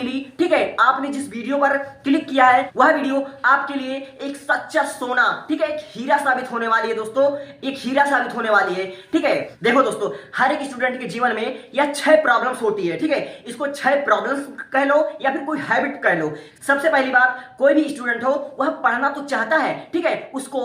ठीक है। आपने जिस वीडियो पर क्लिक किया है वह वीडियो आपके लिए एक सच्चा सोना, ठीक है, एक हीरा साबित होने वाली है दोस्तों, एक हीरा साबित होने वाली है, ठीक है। देखो दोस्तों, हर एक स्टूडेंट के जीवन में यह 6 प्रॉब्लम्स होती है, ठीक है। इसको 6 प्रॉब्लम्स कह लो या फिर कोई हैबिट कह लो। सबसे पहली बात, कोई भी स्टूडेंट हो वह पढ़ना तो चाहता है, ठीक है। उसको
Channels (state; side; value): identical; both; correlation 1.00